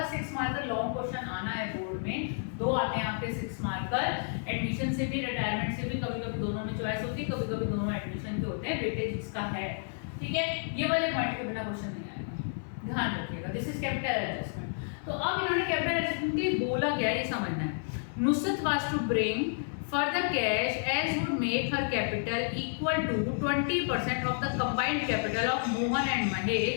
6 मार्कर लॉन्ग क्वेश्चन आना है बोर्ड में, 2 आते हैं आपके 6 मार्कर, एडमिशन से भी रिटायरमेंट से भी, कभी कभी दोनों में चॉइस होती है, कभी कभी दोनों एडमिशन के होते हैं, वेटेज इसका है। ठीक है, ये वाले पॉइंट के बिना क्वेश्चन नहीं आएगा, ध्यान रखिएगा। This is capital adjustment. तो अब इन्होंने कैपिटल एडजस्टमेंट के बोला क्या है ये समझना है। Nusrat was to bring further cash as would make her capital equal to 20% of the combined capital of Mohan and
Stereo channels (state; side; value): silent; right; 57 dB below the other